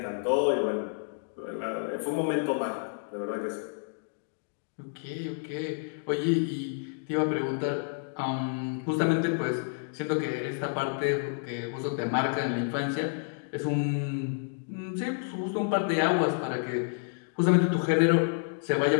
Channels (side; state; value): right; silent; digital silence